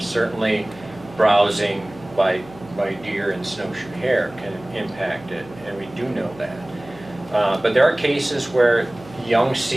Certainly, browsing by deer and snowshoe hare can impact it, and we do know that. But there are cases where young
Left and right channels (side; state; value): right; noise; hum, 20 dB below the sound